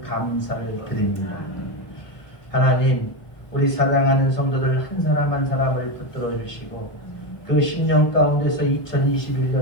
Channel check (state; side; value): late; right; 1.2 ms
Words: 감사를 드립니다. 하나님, 우리 사랑하는 성도들 한 사람 한 사람을 붙들어 주시고, 그 10년 가운데서